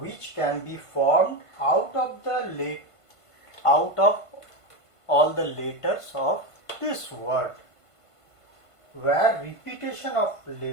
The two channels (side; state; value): right; late; 1.5 ms